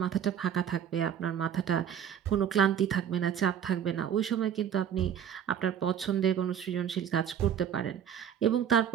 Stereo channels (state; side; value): quieter; left; 8.9 dB